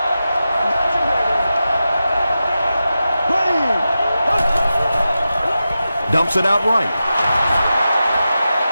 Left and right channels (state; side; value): inverted; both; correlation -0.92